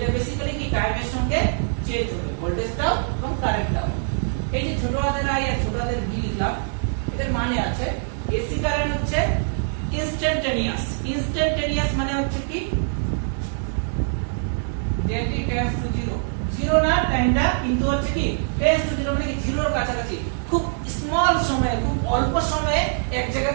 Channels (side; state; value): left; silent; digital silence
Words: বেসিক্যালি কি টাইমের সঙ্গে চেঞ্জ হবে, ভোল্টেজটাও এবং কারেন্টটাও। এই যে ছোট হাতের আই আর ছোট হাতের ভি লিখলাম, এদের মানে আছে এসি কারেন্ট হচ্ছে ইনস্ট্যান্টেনিয়াস। ইনস্ট্যান্টেনিয়াস মানে হচ্ছে কি যেটি টেন্ডস টু জিরো, জিরো না টাইমটা কিন্তু হচ্ছে কি টেন্ডস টু জিরো, মানে কি জিরোর কাছাকাছি, খুব স্মল সময়ে, খুব অল্প সময়ে এক জায়গা